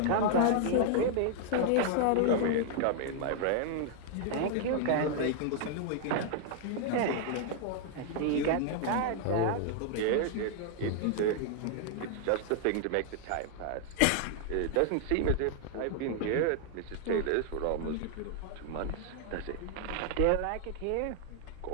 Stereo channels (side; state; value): both; different; correlation 0.00